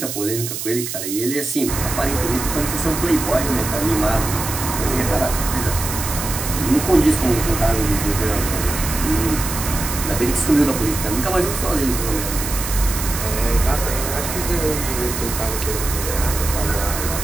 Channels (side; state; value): right; noise; hiss, 5 dB below the sound